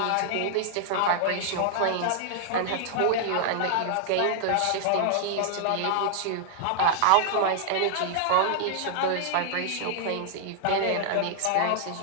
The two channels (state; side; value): different; both; correlation -0.01